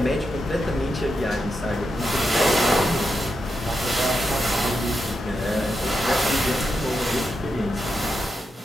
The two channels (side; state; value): both; normal; correlation 0.86